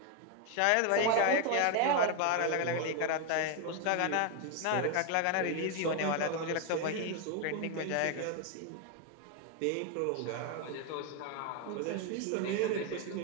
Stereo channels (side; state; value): both; different; correlation 0.01